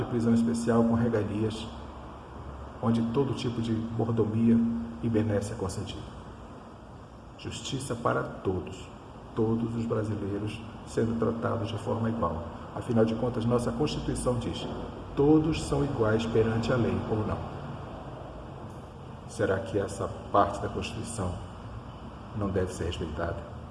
prisão especial com regalias, onde todo tipo de mordomia e benesse é concedido. Justiça para todos os brasileiros sendo tratados de forma igual. Afinal de contas, nossa Constituição diz: todos são iguais perante a lei, ou não? Será que essa parte da Constituição não deve ser respeitada?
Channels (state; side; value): identical; both; correlation 1.00